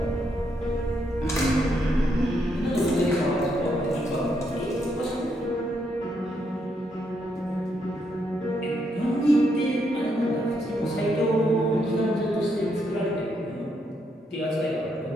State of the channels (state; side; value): normal; both; correlation 0.77